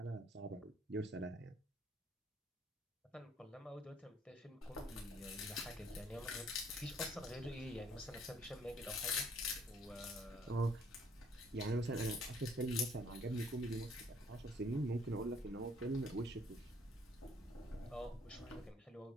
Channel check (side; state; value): both; normal; correlation 0.62